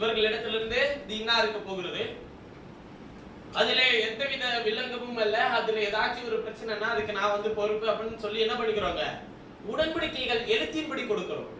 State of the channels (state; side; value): identical; both; correlation 1.00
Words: இது இன்னா இருக்க போகிறது, அதுல எந்தவித வில்லங்கமும் அல்ல, அதுல ஏதாச்சும் ஒரு பிரச்சனைனா அதுக்கு நான் வந்து பொறுப்பு அப்படின்னு சொல்லி என்ன பண்ணிக்கிறோங்க? உடன்படிக்கைகள் எழுத்தின்படி கொடுக்கிறோம்.